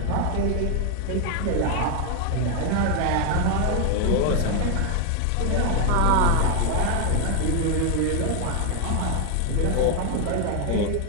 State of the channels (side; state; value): both; different; correlation 0.01